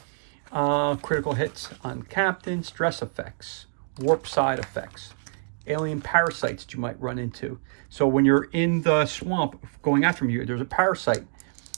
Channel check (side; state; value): left; silent; digital silence